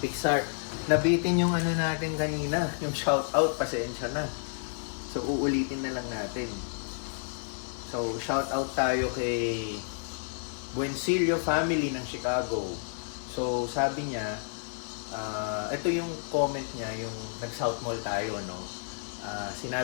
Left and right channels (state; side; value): silent; right; 58 dB below the other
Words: Nabitin yung ano natin kanina, yung shout out, pasensya na. So uulitin na lang natin. So shout out tayo kay Buencillo family ng Chicago. So sabi niya, ito yung comment niya, yung nag-South Mall tayo, no?